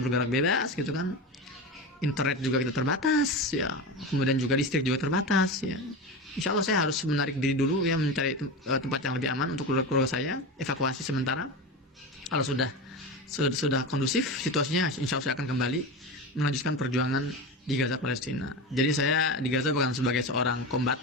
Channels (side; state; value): both; normal; correlation 0.23